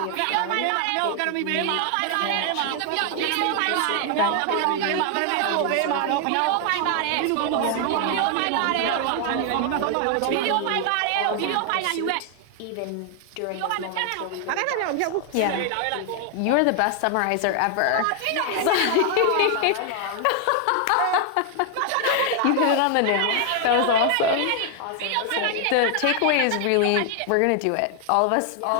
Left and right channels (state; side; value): different; both; correlation 0.00